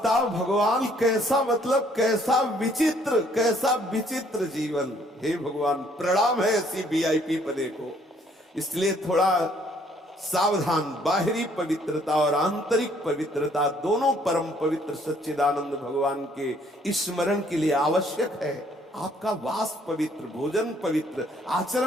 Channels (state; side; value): normal; both; correlation 0.63